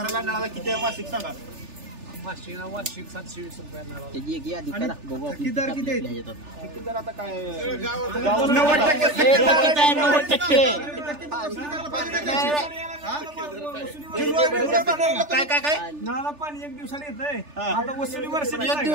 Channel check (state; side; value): late; left; 3.4 ms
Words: नळाला किती मासिक सांगा. वार्षिक 720 रुपये. ठेकेदार किती आहेत? ठेकेदार आता काय 90% काय नळाला पाणी 1 दिवसाला येतंय. आता वसुली वर्ष 1